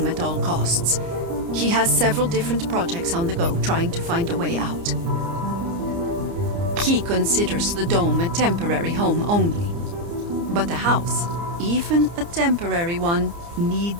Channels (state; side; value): late; left; 29 ms